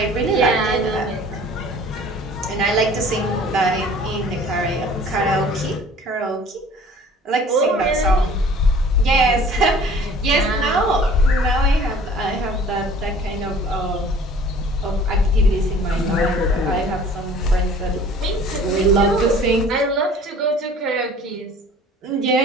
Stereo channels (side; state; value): both; normal; correlation 0.49